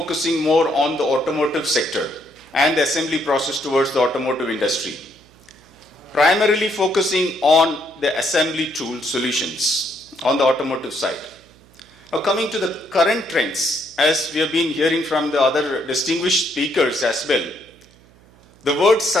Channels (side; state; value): right; noise; hum, 28 dB below the sound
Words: more on the automotive sector and the assembly process towards the automotive industry, primarily focusing on the assembly tool solutions on the automotive side. Now coming to the current trends, as we have been hearing from the other distinguished speakers as well, the word